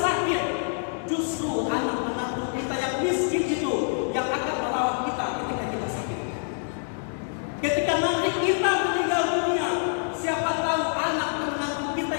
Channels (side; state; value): right; silent; digital silence